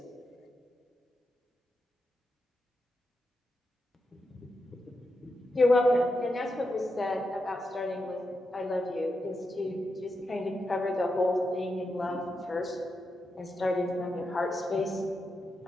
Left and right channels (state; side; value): normal; both; correlation 0.87